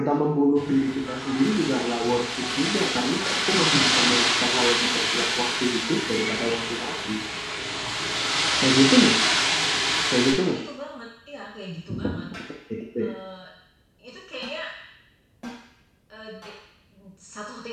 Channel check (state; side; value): identical; both; correlation 1.00